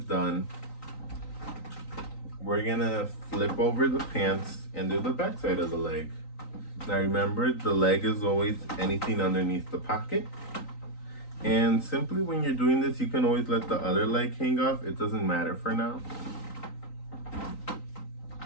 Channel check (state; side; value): late; right; 3.9 ms